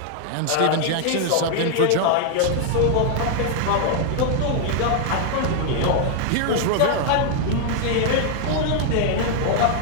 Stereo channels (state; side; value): different; both; correlation 0.00